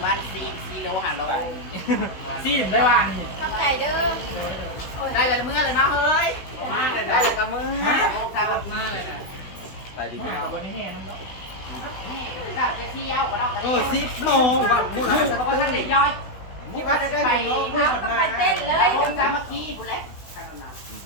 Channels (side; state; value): right; late; 16 ms